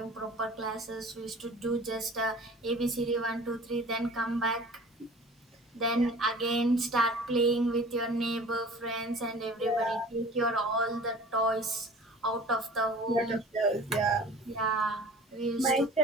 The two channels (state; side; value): normal; both; correlation 0.44